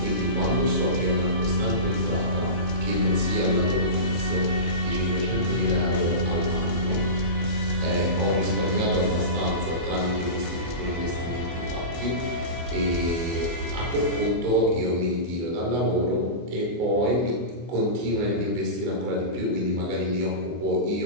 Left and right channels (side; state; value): left; late; 23 ms